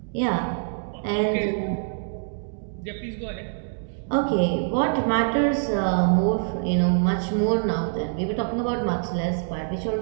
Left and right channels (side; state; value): left; silent; digital silence